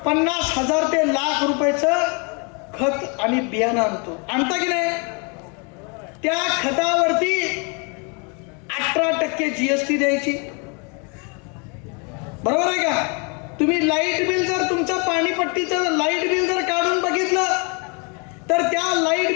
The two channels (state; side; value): quieter; right; 34.4 dB